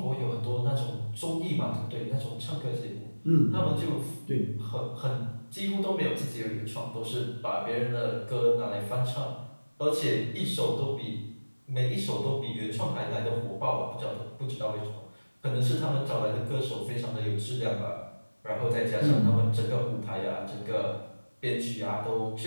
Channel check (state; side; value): inverted; both; correlation -1.00